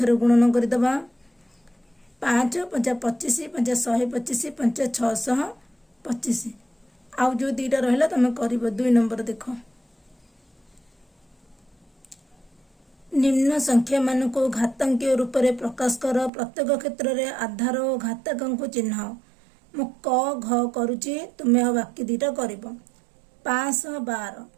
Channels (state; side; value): drops out; left; at 16.3 s